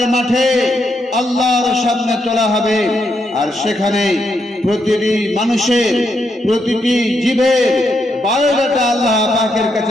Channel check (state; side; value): normal; both; correlation 0.80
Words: মাঠে আল্লাহর সামনে তোলা হবে, আর সেখানে প্রতিটি মানুষের, প্রতিটি জীবের বায়োডাটা আল্লাহ পাকের